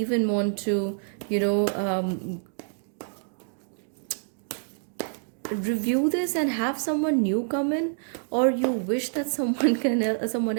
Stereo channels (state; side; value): silent; left; digital silence